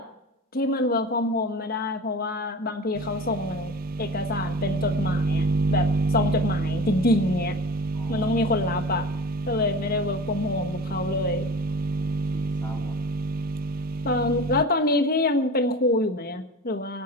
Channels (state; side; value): normal; both; correlation 0.35